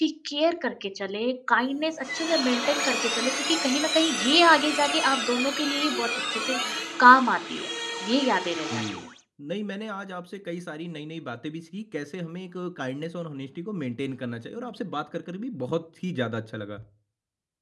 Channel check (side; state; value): both; identical; correlation 1.00